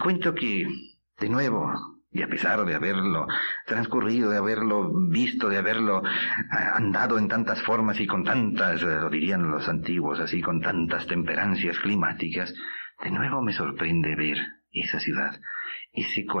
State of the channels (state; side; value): inverted; both; correlation -1.00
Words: que, de nuevo, y a pesar de haberlo transcurrido, de haberlo visto, de haberlo andado en tantas formas y con tantas, lo dirían los antiguos así, con tantas temperancias climáticas, de nuevo me sorprende ver esa ciudad, ese